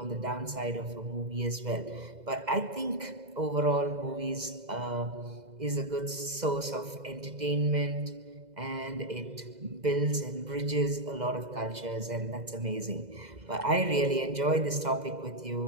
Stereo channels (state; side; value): late; left; 2.0 ms